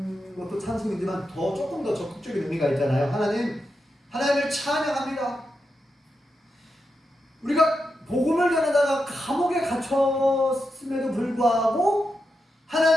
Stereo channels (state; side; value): normal; both; correlation 0.87